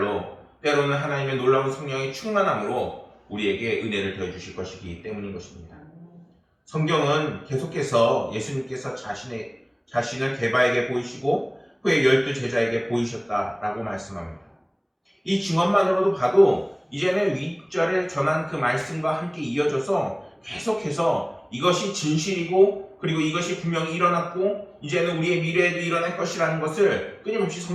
때로는 하나님의 놀라운 성령의 충만함으로 우리에게 은혜를 더해 주실 것이기 때문인 것입니다. 성경은 계속해서 예수님께서 자신을 게바에게 보이시고 후에 12 제자에게 보이셨다라고 말씀합니다. 이 증언만으로도 봐도 이제는 윗절에 전한 그 말씀과 함께 이어져서 계속해서 이것이 진실이고 그리고 이것이 분명히 일어났고 이제는 우리의 미래에도 일어날 것이라는 것을 끊임없이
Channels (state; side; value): identical; both; correlation 1.00